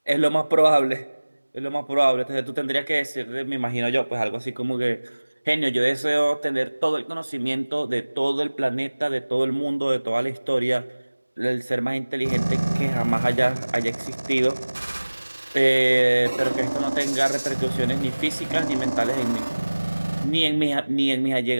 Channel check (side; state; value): both; inverted; correlation -1.00